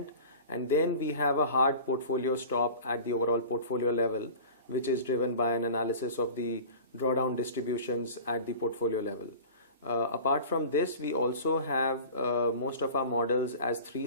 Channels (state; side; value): inverted; both; correlation -0.38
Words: And then we have a hard portfolio stop at the overall portfolio level, which is driven by an analysis of the drawdown distributions at the portfolio level. Apart from this, we also have most of our models as